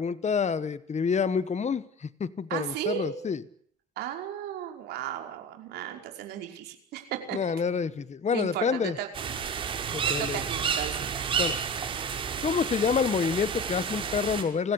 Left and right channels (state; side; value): normal; both; correlation 0.32